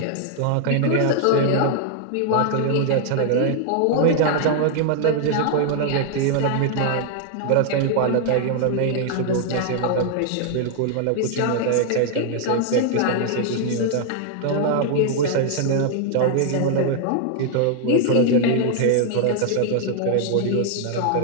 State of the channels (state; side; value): different; both; correlation 0.00